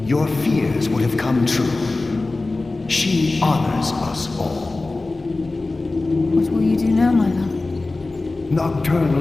your fears would have come true. She honors us all. What will you do now, my love?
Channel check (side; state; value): right; quieter; 3.3 dB